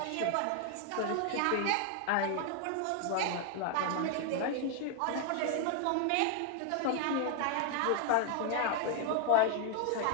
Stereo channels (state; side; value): different; both; correlation 0.00